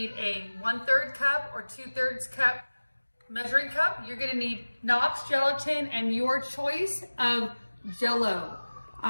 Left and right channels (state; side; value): inverted; both; correlation -1.00